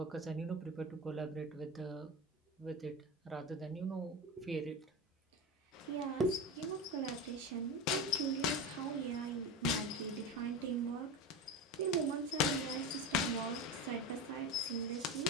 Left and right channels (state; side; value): normal; both; correlation 0.23